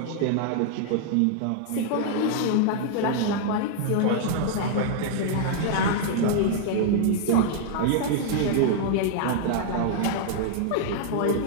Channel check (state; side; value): different; both; correlation -0.01